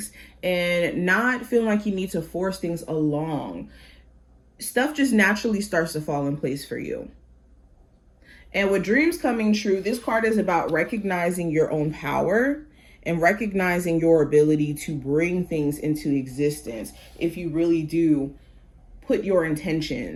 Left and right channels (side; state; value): both; identical; correlation 1.00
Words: and not feeling like you need to force things along, stuff just naturally starts to fall in place for you. And with dreams coming true, this card is about recognizing your own power and recognizing your ability to bring things into existence if you really do put your